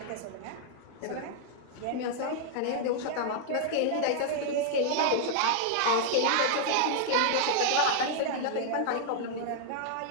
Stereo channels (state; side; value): different; both; correlation -0.01